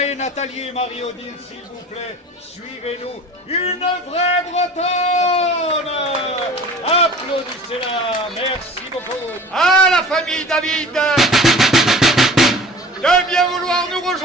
et Nathalie et Marie-Odile, s'il vous plaît, suivez-nous. Une vraie Bretonne! Applaudissez-la, merci beaucoup. À la famille David de bien vouloir nous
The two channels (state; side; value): normal; both; correlation 0.43